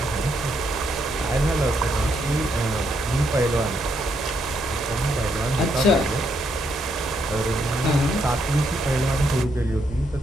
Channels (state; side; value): normal; both; correlation 0.76